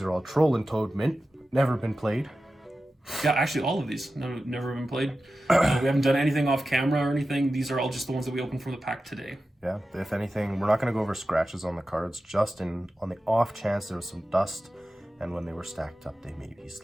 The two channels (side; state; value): both; normal; correlation 0.93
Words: are all Troll and Toad mint, never been played. yeah, actually all of these never been played. We haven't done anything off camera or anything. These are all just the ones that we opened from the pack today. Yeah, if anything, we're not going to go over scratches on the cards, just on the off chance there was some dust, and when they were stacked up, they maybe